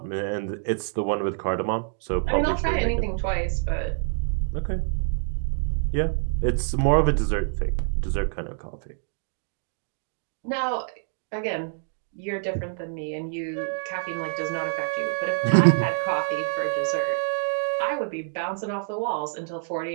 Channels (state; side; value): silent; left; 61 dB below the other